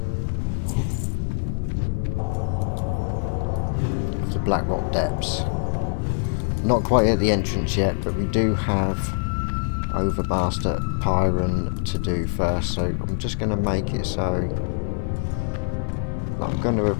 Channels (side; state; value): right; silent; digital silence